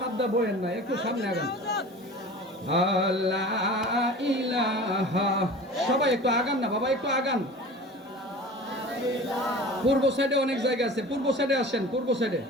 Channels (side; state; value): both; normal; correlation 0.38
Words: সাবদা বয়েন না, একটু সামনে আগান। লা ইলাহা। সবাই একটু আগান না বাবা, একটু আগান। পূর্ব সাইডে অনেক জায়গা আছে, পূর্ব সাইডে আসেন, পূর্ব সাইডে।